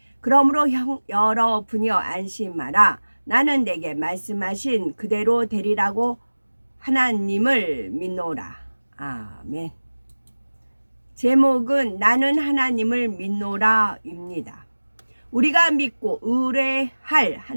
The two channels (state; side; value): inverted; both; correlation -1.00